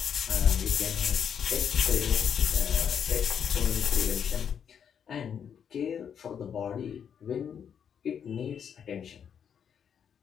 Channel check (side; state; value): right; quieter; 8.0 dB